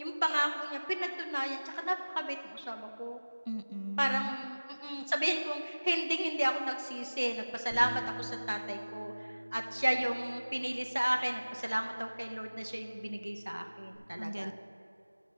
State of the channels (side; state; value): both; inverted; correlation -1.00